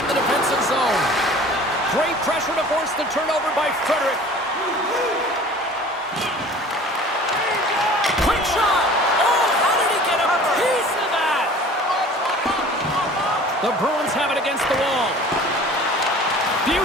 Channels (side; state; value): both; normal; correlation 0.45